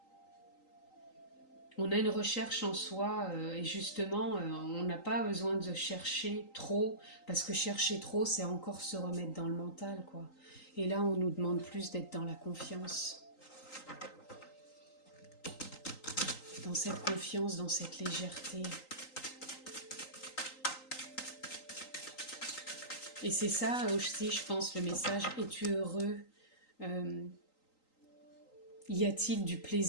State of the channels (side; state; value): right; late; 3.8 ms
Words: On a une recherche en soi et justement, on n'a pas besoin de chercher trop, parce que chercher trop, c'est encore se remettre dans le mental, quoi. Et là, on nous demande plus d'être dans la confiance. Dans cette confiance, dans cette légèreté. Et c'est ça aussi, je pense, le message, es-tu heureux ? Y a-t-il du